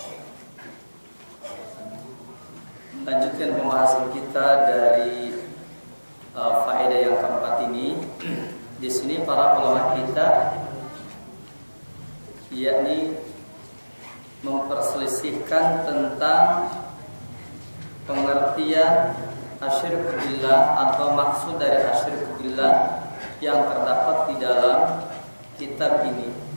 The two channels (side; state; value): both; inverted; correlation -1.00